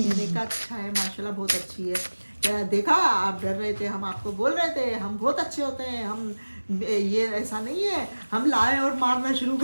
कहा अच्छा है माशाल्लाह, बहुत अच्छी है। क्या देखा आप डर रहे थे, हम आपको बोल रहे थे हम बहुत अच्छे होते हैं, हम ये ऐसा नहीं है हम लाए और मारना शुरू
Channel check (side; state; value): both; inverted; correlation -1.00